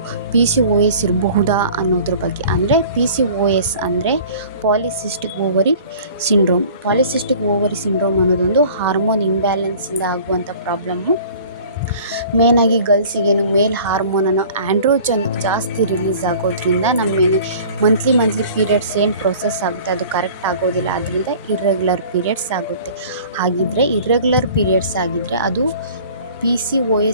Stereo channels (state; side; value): inverted; both; correlation -0.46